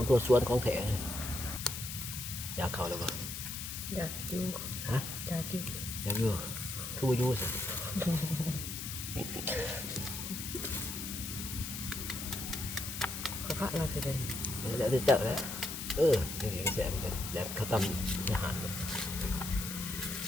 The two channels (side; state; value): left; noise; hiss, 6 dB below the sound